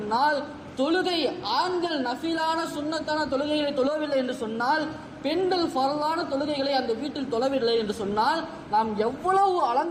தொழுகை ஆண்கள் நஃபிலான சுன்னத்தான தொழுகைகளை தொழவில்லை என்று சொன்னால், பெண்கள் ஃபரலான தொழுகைகளை அந்த வீட்டில் தொழவில்லை என்று சொன்னால், நாம் எவ்வளவு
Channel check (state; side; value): identical; both; correlation 1.00